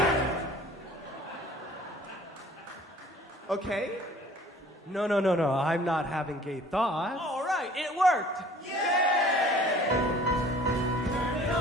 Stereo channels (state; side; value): normal; both; correlation 0.51